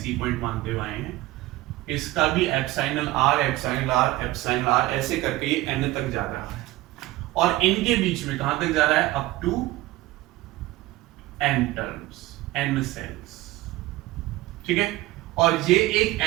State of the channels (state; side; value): quieter; left; 17.5 dB